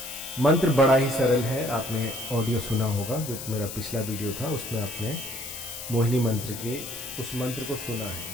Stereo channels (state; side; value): noise; left; hiss, 9 dB below the sound